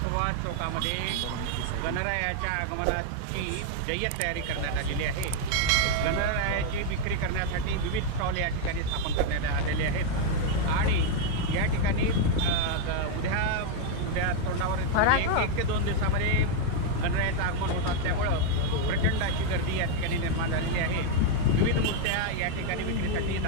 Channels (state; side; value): different; both; correlation 0.00